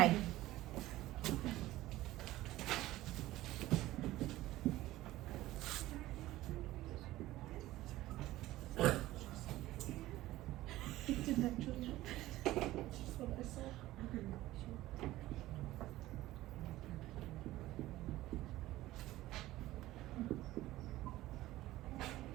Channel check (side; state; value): left; quieter; 16.4 dB